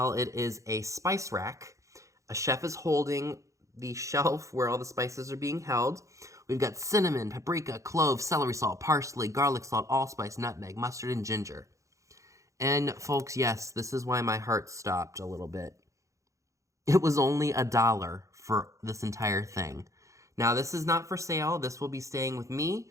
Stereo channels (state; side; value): late; left; 0.15 ms